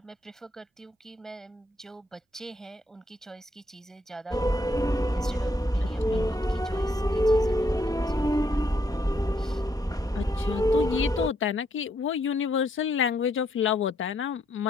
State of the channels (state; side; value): normal; both; correlation 0.73